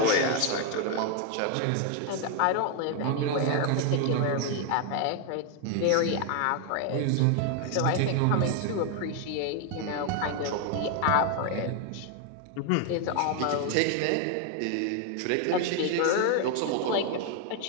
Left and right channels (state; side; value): different; both; correlation 0.00